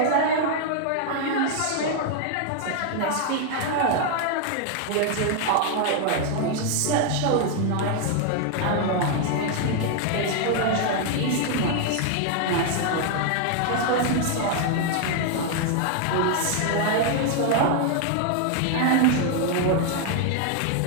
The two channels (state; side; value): different; both; correlation 0.00